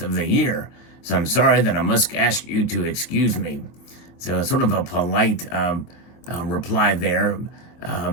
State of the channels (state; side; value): late; right; 23 ms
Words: the year. So I'm sorry that I must ask you to excuse me." So it's sort of a polite reply there,